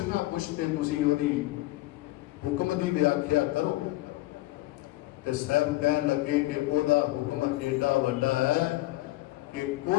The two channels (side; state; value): right; quieter; 18.0 dB